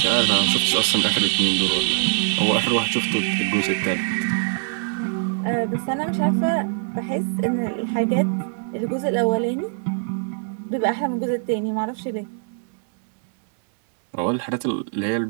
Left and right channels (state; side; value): silent; left; 64 dB below the other